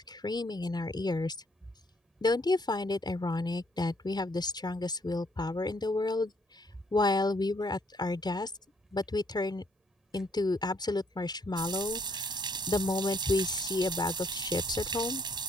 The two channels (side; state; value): both; normal; correlation 0.68